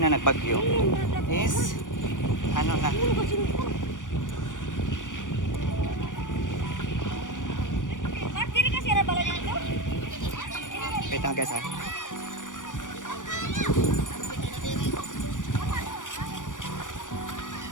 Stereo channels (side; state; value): right; late; 0.87 ms